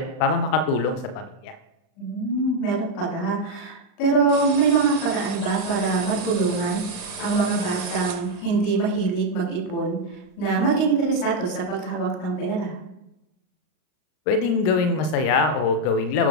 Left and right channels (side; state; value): right; late; 39 ms